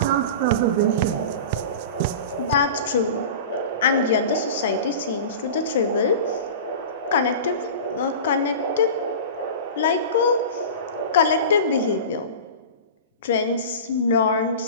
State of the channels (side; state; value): both; inverted; correlation -0.33